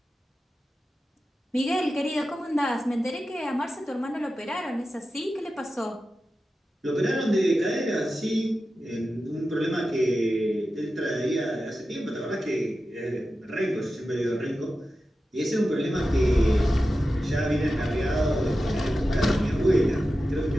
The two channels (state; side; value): normal; both; correlation 0.93